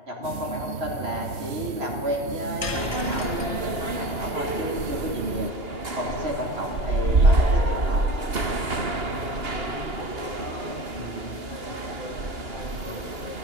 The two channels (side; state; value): left; late; 2.8 ms